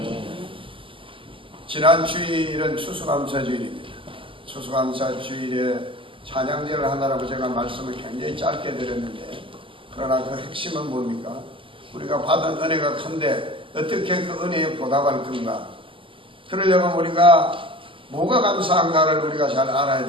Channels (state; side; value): late; left; 0.25 ms